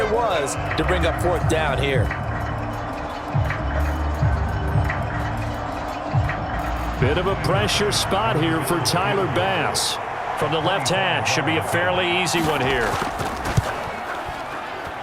it was to bring up 4th down here. Bit of a pressure spot here for Tyler Bass. From the left hash, should be a fairly easy one here.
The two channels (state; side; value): identical; both; correlation 1.00